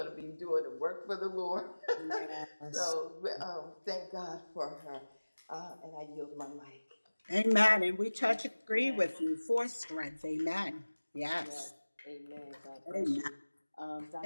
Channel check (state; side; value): inverted; both; correlation -1.00